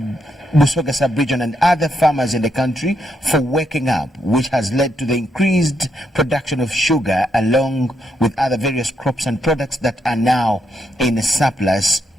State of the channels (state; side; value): normal; both; correlation 0.79